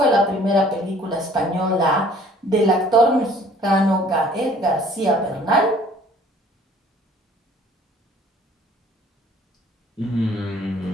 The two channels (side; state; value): both; normal; correlation 0.54